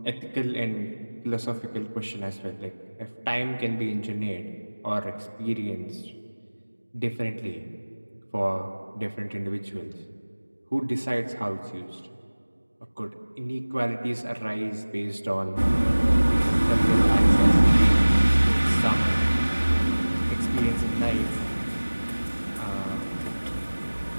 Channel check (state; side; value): inverted; both; correlation -1.00